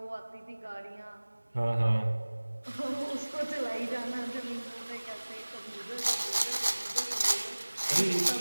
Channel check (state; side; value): inverted; both; correlation -1.00